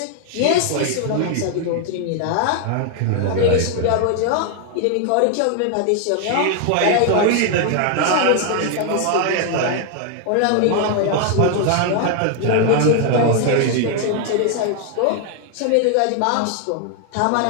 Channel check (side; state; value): both; different; correlation 0.00